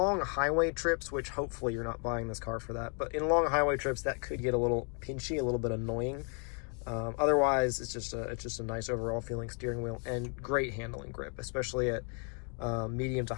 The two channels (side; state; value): right; quieter; 38.7 dB